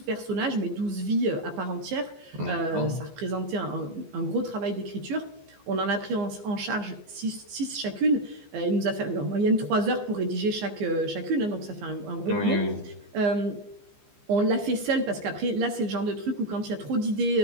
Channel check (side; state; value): left; late; 15 ms